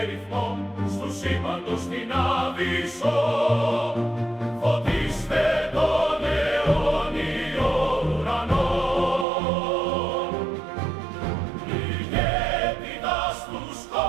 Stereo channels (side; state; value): left; drops out; at 9.2 s